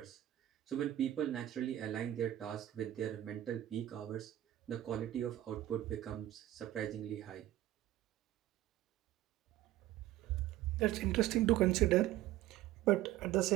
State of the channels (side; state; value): left; quieter; 14.0 dB